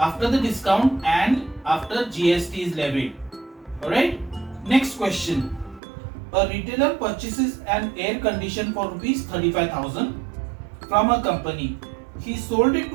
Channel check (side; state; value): left; drops out; at 5.8 s